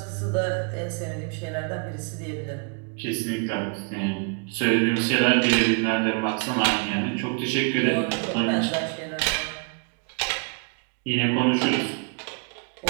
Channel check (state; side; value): quieter; left; 37.5 dB